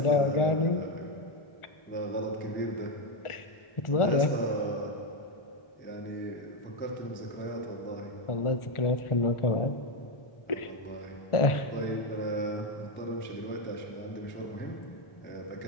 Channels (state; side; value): late; right; 1.4 ms